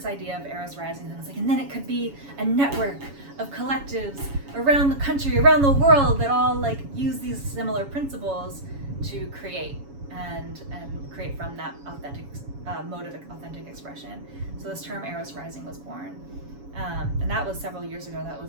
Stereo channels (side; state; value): left; late; 7.2 ms